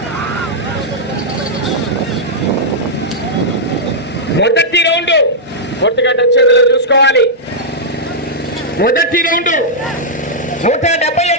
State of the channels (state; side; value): normal; both; correlation -0.09